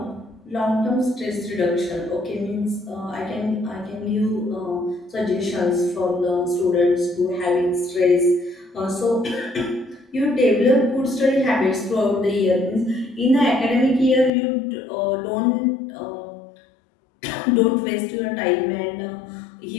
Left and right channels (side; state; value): right; drops out; at 14.3 s